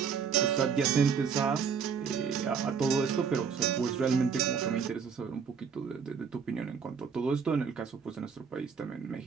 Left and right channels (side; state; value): left; quieter; 6.4 dB